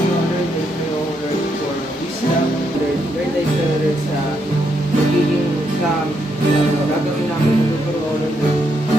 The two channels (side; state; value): both; normal; correlation 0.78